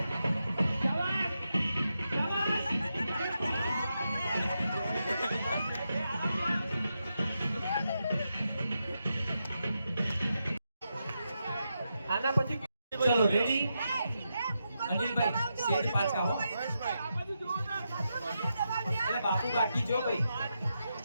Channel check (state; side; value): inverted; both; correlation -0.86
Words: આના પછી ચલો રેડી અનિલભાઈ સેજ પાછા હો. એટલે બાપુ બાકી જો ભાઈ